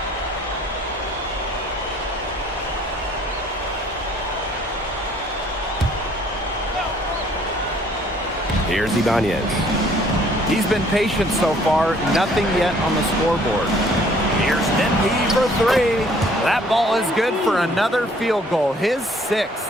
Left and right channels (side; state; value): both; normal; correlation 0.59